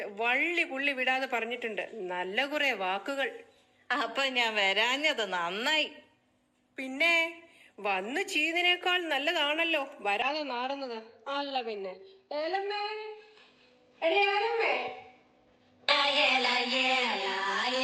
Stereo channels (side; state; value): both; identical; correlation 1.00